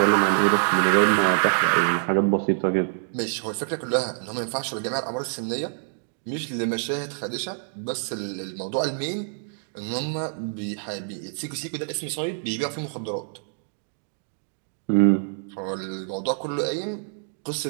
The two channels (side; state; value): left; silent; digital silence